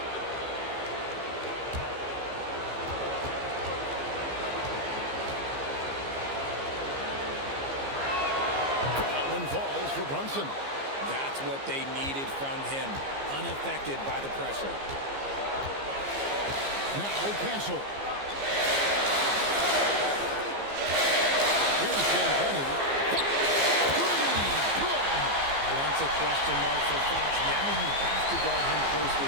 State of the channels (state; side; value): late; left; 15 ms